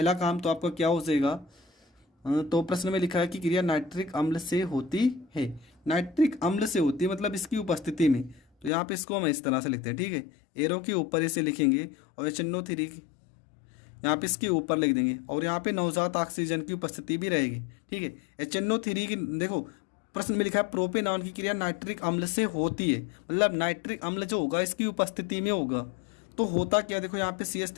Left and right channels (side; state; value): right; drops out; at 8.7 s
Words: काम तो आपका क्या हो जाएगा? तो प्रश्न में लिखा है कि क्रिया नाइट्रिक अम्ल से होती है। नाइट्रिक अम्ल से होती है मतलब इसकी उपस्थिति में। तो यहाँ पे इसको हम इस तरह से लिखते हैं, ठीक है। एरो के ऊपर इसे लिखेंगे और HNO3 यहाँ पे इसके ऊपर लिख देंगे, और यहाँ पे नवजात ऑक्सीजन की उपस्थिति भी रहेगी, ठीक है। HNO3 की देखो प्रश्न में लिखा है प्रोपेनॉन की क्रिया नाइट्रिक अम्ल से होती है, मतलब नाइट्रिक अम्ल जो होगा इसकी उपस्थिति में होगा। तो होता क्या? देखो यहाँ पे